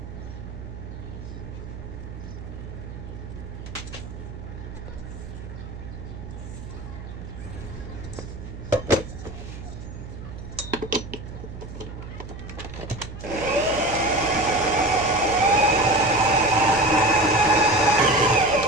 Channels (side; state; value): right; noise; hum, 11 dB below the sound